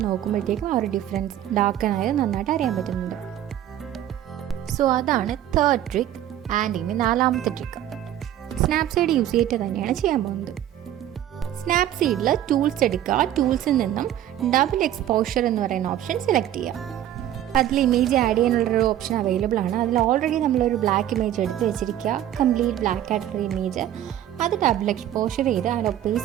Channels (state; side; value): quieter; left; 11.9 dB